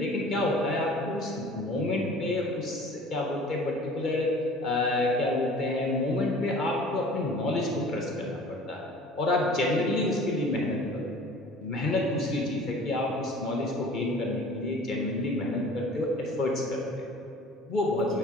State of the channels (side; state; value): both; normal; correlation 0.46